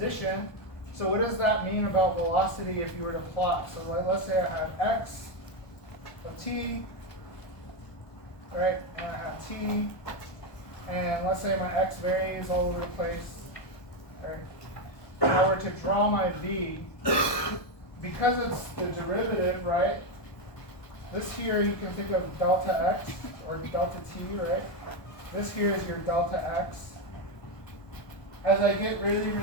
So what does that mean about velocity if you were to plot? So let's say I have x of t, right, and I have t, and let's say my x varies all over the place, right. If I were to draw my v, because it's the derivative, right, this here you can think of delta x, or delta t, right, this here is your delta x. As I get really,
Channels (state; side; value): late; right; 1.2 ms